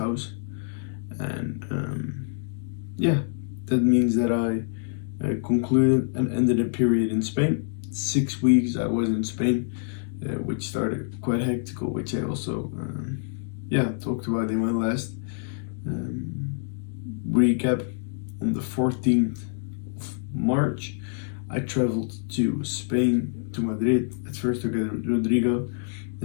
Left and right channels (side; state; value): right; silent; digital silence